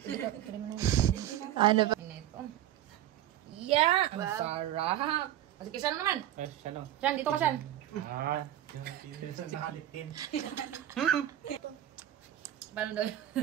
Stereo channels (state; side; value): quieter; left; 12.3 dB